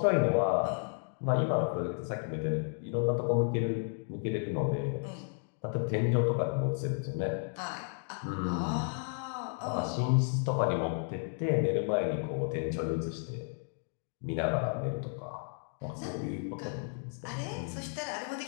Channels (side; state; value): right; silent; 56 dB below the other